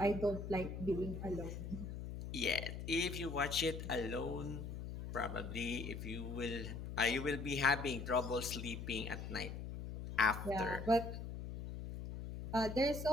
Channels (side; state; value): left; noise; hum, 7 dB below the sound